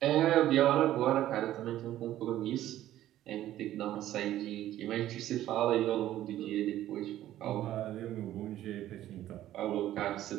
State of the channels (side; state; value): left; quieter; 13.3 dB